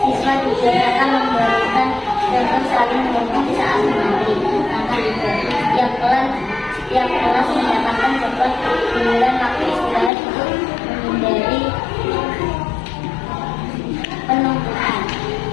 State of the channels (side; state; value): right; drops out; at 10.1 s